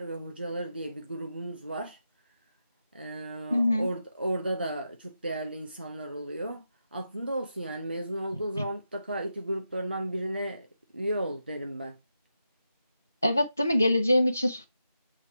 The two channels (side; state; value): both; inverted; correlation -0.87